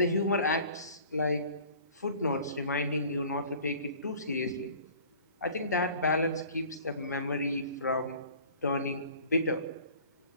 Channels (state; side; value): inverted; both; correlation -0.48